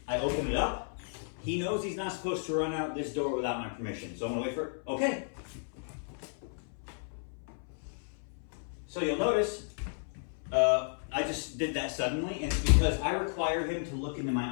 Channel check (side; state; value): right; silent; 56 dB below the other